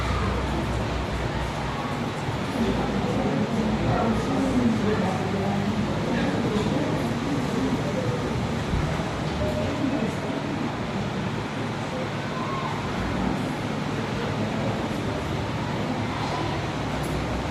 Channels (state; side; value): identical; both; correlation 1.00